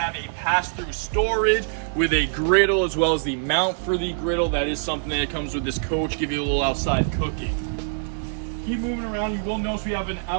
a pass-through storage with a griddle as well as the mount for the griddle. That is something that comes with this coach, give you a little outside cooking. Keep moving around, you will notice we have an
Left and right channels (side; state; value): left; silent; digital silence